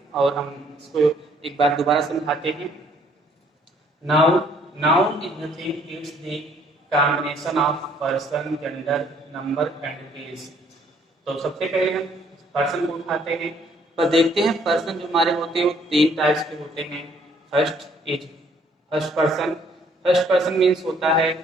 और हम इसको एक बार दोबारा समझाते हैं। Noun is nothing, it's the combination of person, gender, number and place. तो सबसे पहले हम पर्सन को उठाते हैं पर देखते हैं पर्सन जो हमारे होते हैं वो तीन टाइप्स के होते हैं। फर्स्ट फर्स्ट पर्सन मीन्स होता है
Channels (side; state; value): both; normal; correlation 0.63